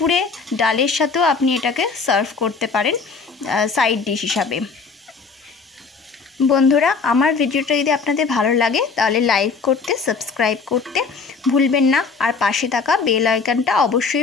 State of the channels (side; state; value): right; quieter; 4.9 dB